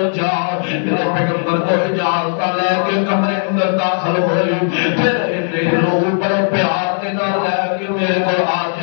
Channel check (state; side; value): silent; right; digital silence